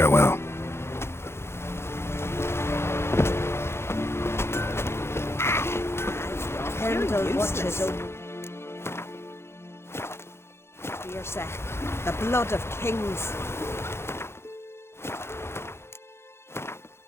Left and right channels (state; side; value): late; right; 0.12 ms